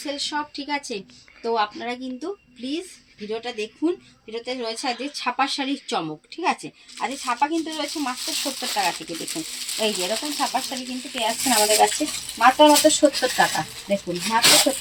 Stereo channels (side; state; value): both; identical; correlation 1.00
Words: শপ, ঠিক আছে? তো আপনারা কিন্তু প্লিজ ভিডিওটা দেখুন। ভিডিওতে রয়েছে আজকে ছাপার শাড়ির চমক, ঠিক আছে? আর এই ছাপা কিন্তু রয়েছে মাত্র 70 টাকা থেকে। দেখুন এই যে এরকম ছাপার শাড়ি কিন্তু পেয়ে যাচ্ছেন আমাদের কাছে মাত্র 70 টাকা। দেখুন মাত্র